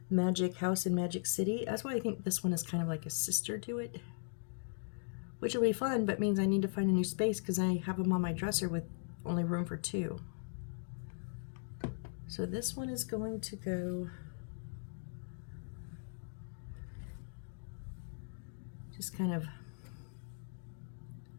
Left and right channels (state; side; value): silent; right; digital silence